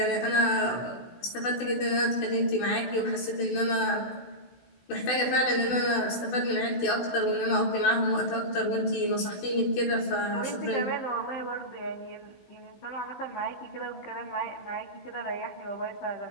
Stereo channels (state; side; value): late; right; 16 ms